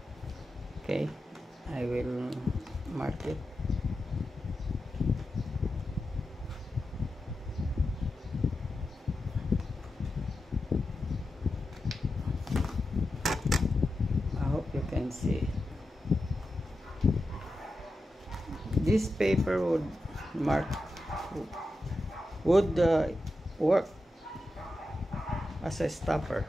Okay, I will mark it. Can see this paper would work as a stopper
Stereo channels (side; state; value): both; normal; correlation 0.90